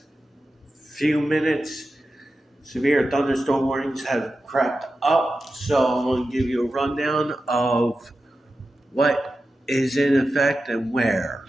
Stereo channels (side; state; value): both; normal; correlation 0.92